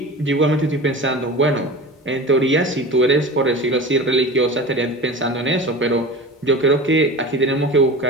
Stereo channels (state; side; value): normal; both; correlation 0.32